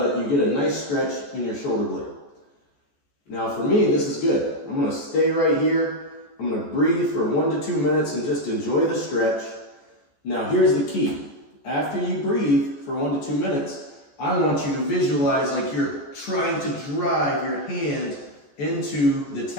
you get a nice stretch in your shoulder blade. Now for me, this is good. I'm gonna stay right here. I'm gonna breathe for 1 to 2 minutes and just enjoy the stretch. Now here's the key. After you breathe for 1 to 2 minutes, I want you to visualize like you're trying to drive your hand into the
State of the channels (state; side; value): late; right; 14 ms